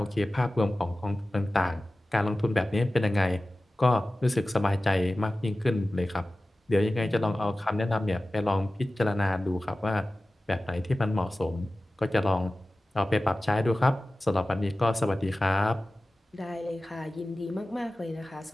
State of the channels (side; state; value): both; normal; correlation 0.96